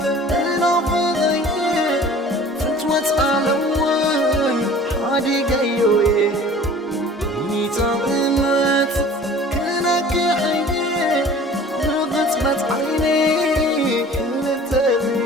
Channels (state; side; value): normal; both; correlation 0.46